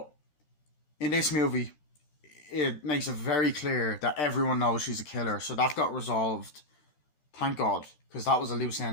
in this movie, it makes it very clear that everyone knows she's a killer. So that got resolved. Thank God. Because that was a loose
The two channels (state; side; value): late; right; 13 ms